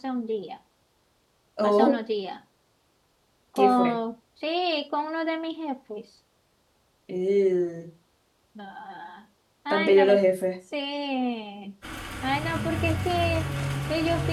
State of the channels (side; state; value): both; identical; correlation 1.00